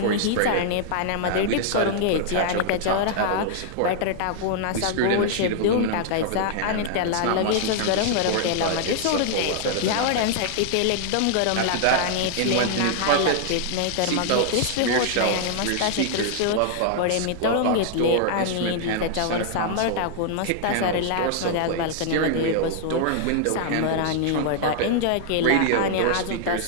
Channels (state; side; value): different; both; correlation -0.01